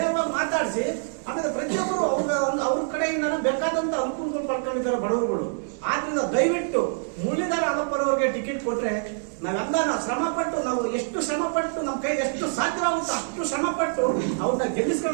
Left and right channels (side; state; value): left; silent; 61 dB below the other